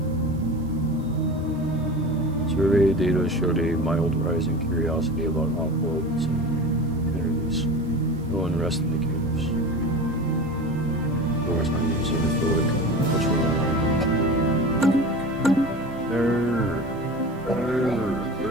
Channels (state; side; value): noise; right; hiss, 30 dB below the sound